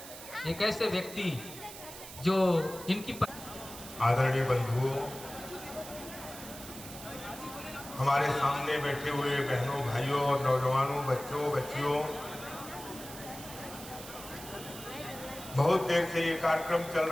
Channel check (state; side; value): noise; right; hiss, 13 dB below the sound